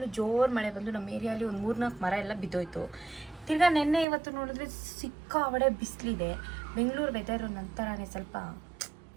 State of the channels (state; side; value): drops out; left; at 4.0 s